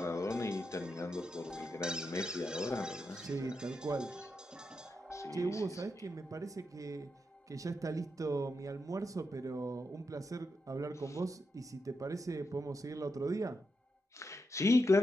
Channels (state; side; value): normal; both; correlation 0.85